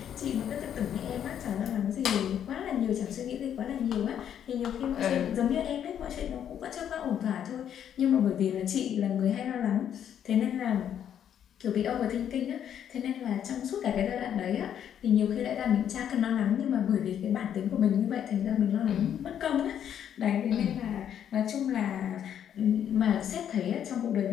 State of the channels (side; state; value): right; quieter; 9.4 dB